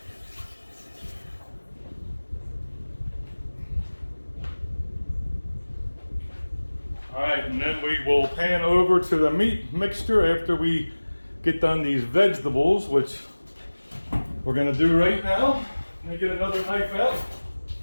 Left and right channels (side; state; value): both; inverted; correlation -1.00